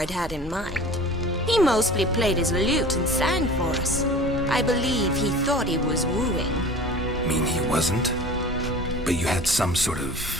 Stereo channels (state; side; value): normal; both; correlation 0.41